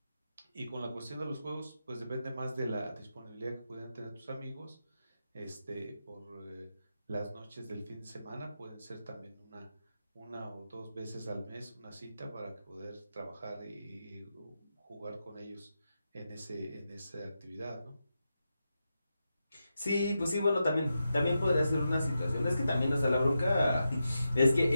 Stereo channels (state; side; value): inverted; both; correlation -0.88